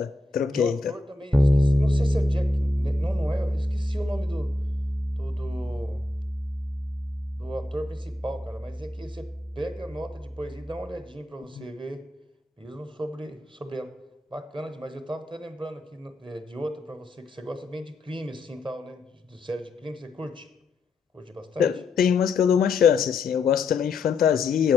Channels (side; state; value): right; quieter; 3.1 dB